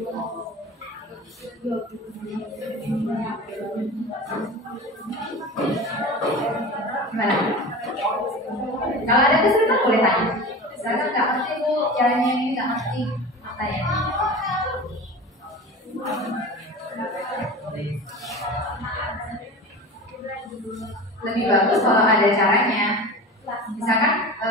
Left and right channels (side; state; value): both; normal; correlation 0.33